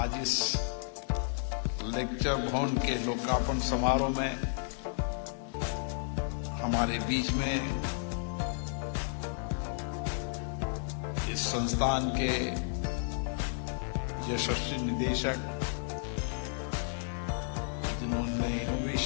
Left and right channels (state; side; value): silent; right; digital silence